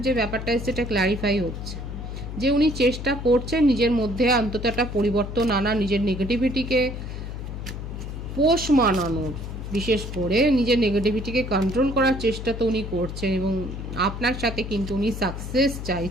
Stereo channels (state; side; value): noise; left; hum, 7 dB below the sound